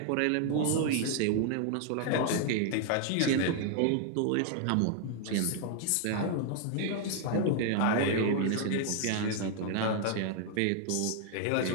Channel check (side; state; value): both; different; correlation 0.00